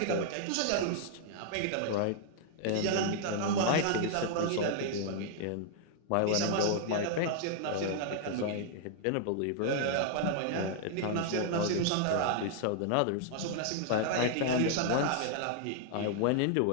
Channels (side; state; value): both; different; correlation 0.00